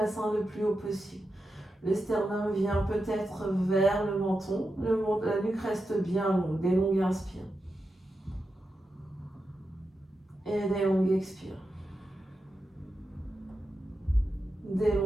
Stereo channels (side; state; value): both; normal; correlation 0.89